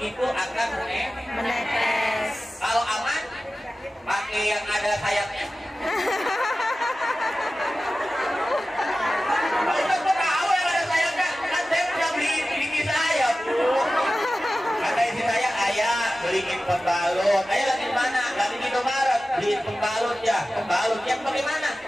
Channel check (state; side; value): normal; both; correlation 0.95